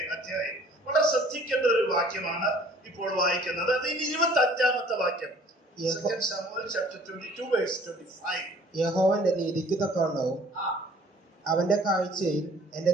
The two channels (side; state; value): both; normal; correlation 0.53